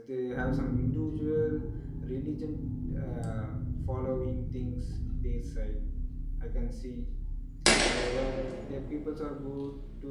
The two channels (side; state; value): both; identical; correlation 1.00